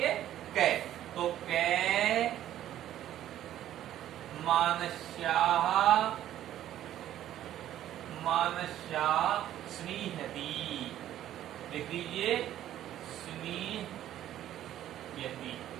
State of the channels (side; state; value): left; quieter; 12.2 dB